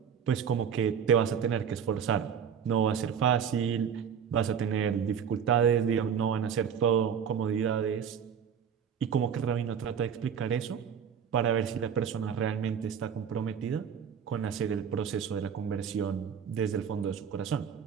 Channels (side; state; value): left; quieter; 7.6 dB